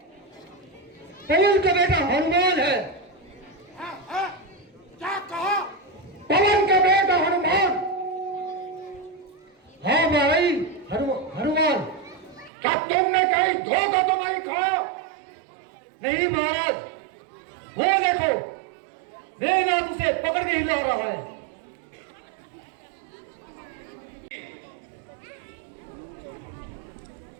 पवन का बेटा हनुमान है। क्या कहा? पवन का बेटा हनुमान। हाँ भाई हनुमान, क्या तुमने कहीं धोखा तो नहीं खाया? नहीं महाराज, वो देखो मेरे नाथ उसे पकड़ के हिला रहा है।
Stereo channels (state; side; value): drops out; left; at 12.5 s